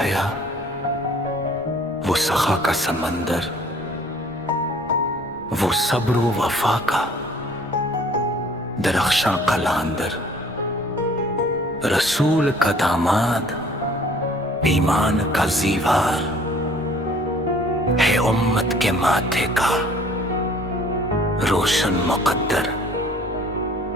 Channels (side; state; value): right; noise; rumble, 21 dB below the sound